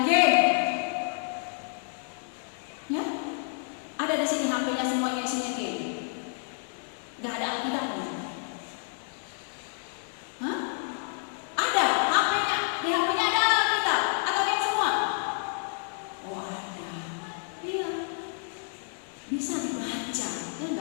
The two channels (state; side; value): silent; right; 58 dB below the other